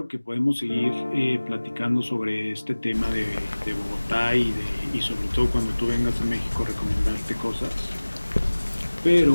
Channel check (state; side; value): inverted; both; correlation -1.00